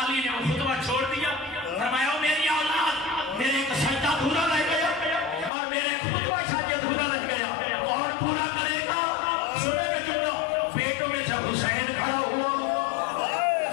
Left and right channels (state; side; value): drops out; right; at 5.5 s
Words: علی نے وہ خطبہ چھوڑ دیا، فرمایا میری اولاد میرے ایک سجدہ ادھورا رہ گیا اور میرا ایک خطبہ شاید ادھورا رہ گیا، کون پورا کرے گا؟ سنے گا جملہ، بیٹوں میں سے حسین کھڑا ہوا،